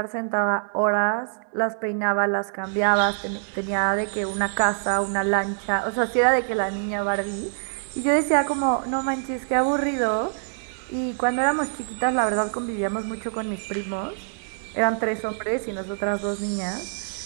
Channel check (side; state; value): left; silent; digital silence